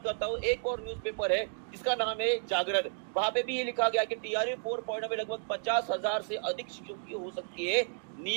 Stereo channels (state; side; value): silent; left; digital silence